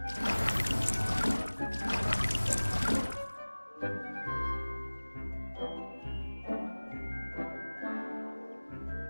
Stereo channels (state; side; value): inverted; both; correlation -1.00